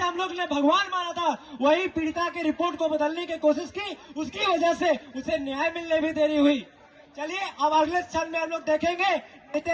हम लोग ने भगवान माना था, वही पीड़िता की रिपोर्ट को बदलने की कोशिश की, उसकी वजह से उसे न्याय मिलने भी देरी हुई। चलिए अब अगले क्षण में हम लोग देखेंगे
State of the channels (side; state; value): both; identical; correlation 1.00